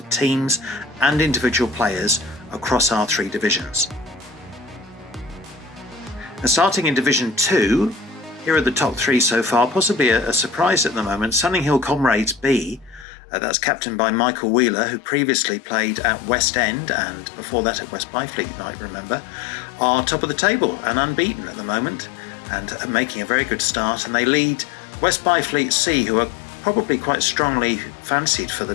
teams and individual players across our 3 divisions. And starting in Division 2, here are the top 3 so far, possibly a surprise at the moment. Sunninghill Comrades B, that's captained by Michael Wheeler, who previously played at West End and before that at West Byfleet, you might remember, are top of the table and unbeaten at the moment and are making a very good start. And they lead West Byfleet C, who are probably quite strongly fancied for the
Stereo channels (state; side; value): drops out; right; at 13.1 s